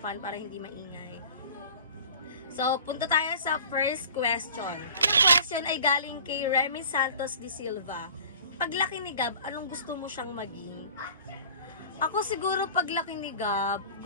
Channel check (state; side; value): inverted; both; correlation -0.44